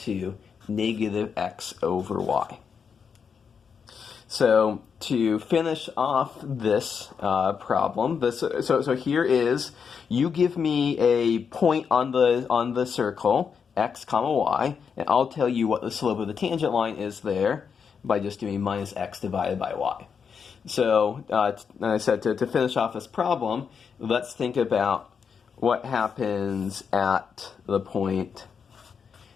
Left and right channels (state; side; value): quieter; right; 6.4 dB